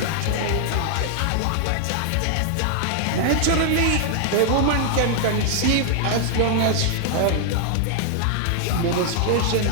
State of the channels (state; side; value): different; both; correlation 0.00